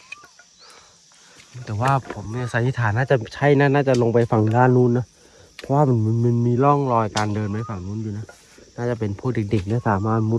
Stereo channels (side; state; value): both; identical; correlation 1.00